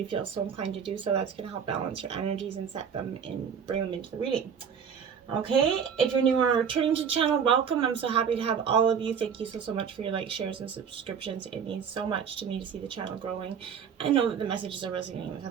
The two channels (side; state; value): left; quieter; 7.2 dB